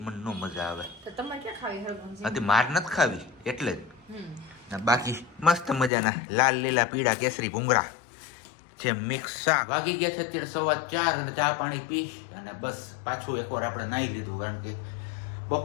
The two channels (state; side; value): drops out; right; at 5.9 s